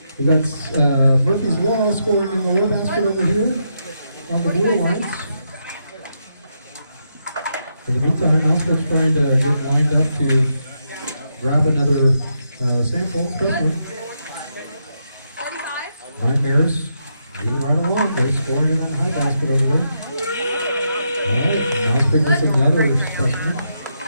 We got Murphy's Law scoring in the low basket over here on the Blue Alliance. In the meantime, Mousepit's trying to get lined up to grab another sample specimen. Nightmares moving right along. They're scoring in that high basket over there. All right, Mousepit gets another specimen.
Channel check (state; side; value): inverted; both; correlation -0.81